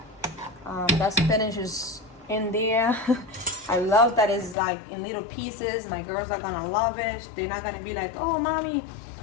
That spinach is in there. I love that it's like in little pieces. My girls are gonna love it. They're not gonna be like, oh mommy,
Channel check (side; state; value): right; drops out; at 4.5 s